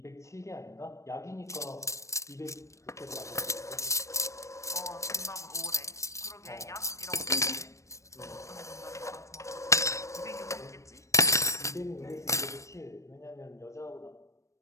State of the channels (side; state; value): right; late; 0.15 ms